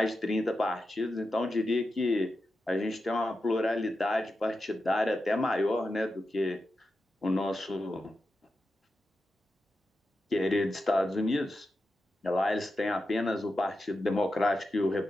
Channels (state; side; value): normal; both; correlation 0.90